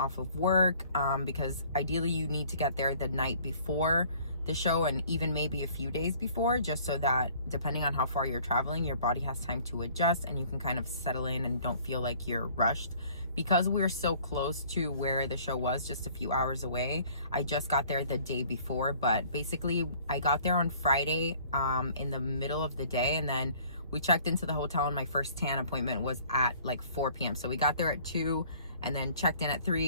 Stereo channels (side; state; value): both; inverted; correlation -0.55